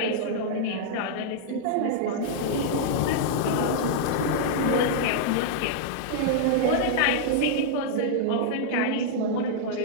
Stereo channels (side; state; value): both; different; correlation -0.02